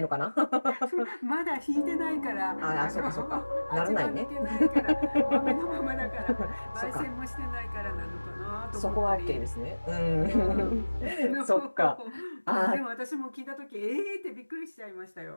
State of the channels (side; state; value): both; inverted; correlation -1.00